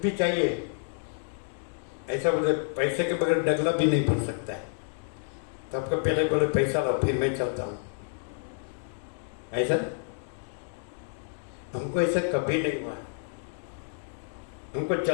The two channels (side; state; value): right; silent; 58 dB below the other